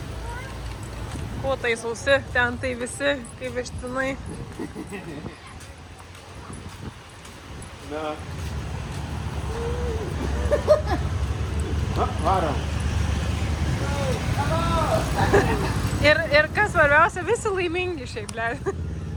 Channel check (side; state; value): both; identical; correlation 1.00